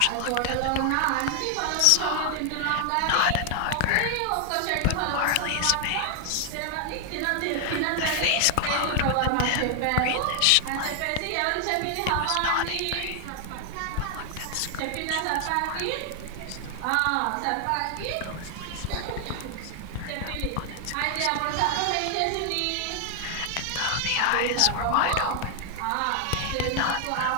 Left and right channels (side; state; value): both; different; correlation 0.00